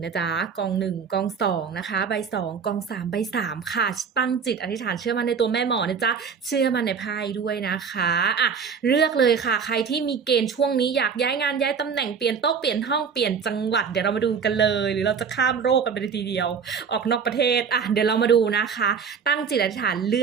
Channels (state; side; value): quieter; left; 6.3 dB